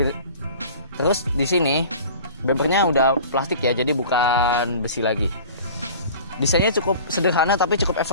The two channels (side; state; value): both; inverted; correlation -0.42